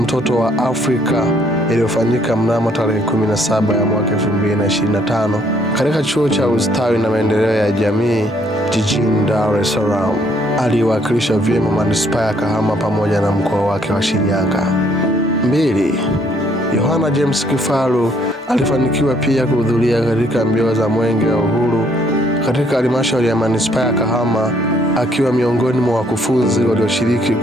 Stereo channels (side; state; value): both; normal; correlation 0.66